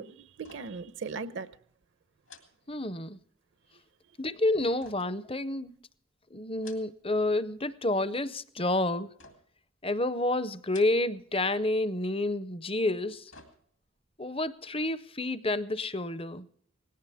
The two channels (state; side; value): normal; both; correlation 0.50